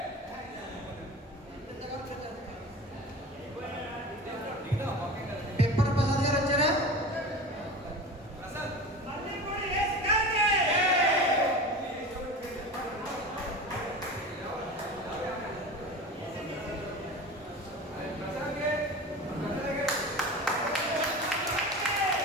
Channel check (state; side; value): normal; both; correlation 0.32